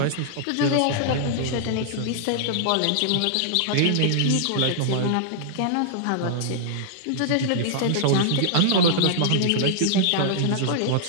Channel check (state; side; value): different; both; correlation -0.01